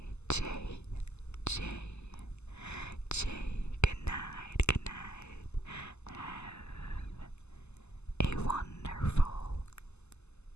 Jay. Jay. Jay. Good night. Good night. Have a wonderful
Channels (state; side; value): late; right; 0.81 ms